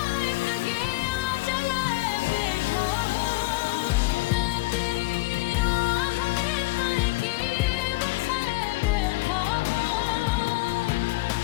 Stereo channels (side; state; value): right; quieter; 22.4 dB